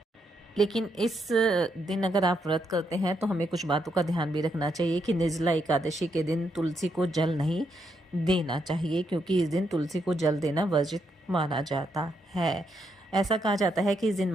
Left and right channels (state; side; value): normal; both; correlation 0.79